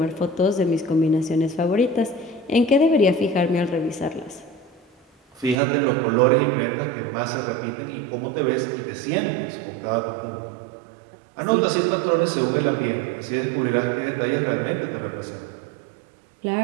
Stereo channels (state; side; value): drops out; left; at 5.6 s